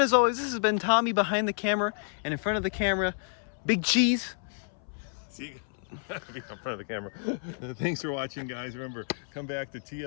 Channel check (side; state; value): right; silent; 58 dB below the other